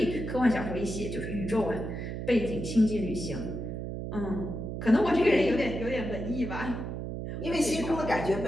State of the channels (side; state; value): right; noise; hum, 5 dB below the sound